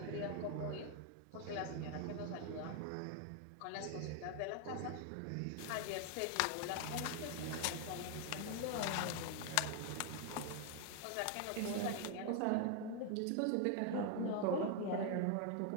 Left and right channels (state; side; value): different; both; correlation 0.00